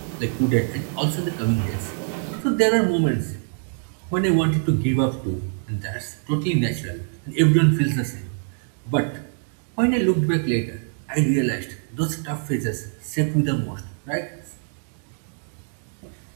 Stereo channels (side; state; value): left; silent; 62 dB below the other